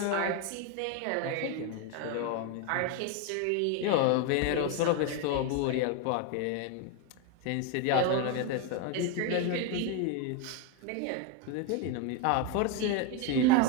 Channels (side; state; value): both; different; correlation 0.01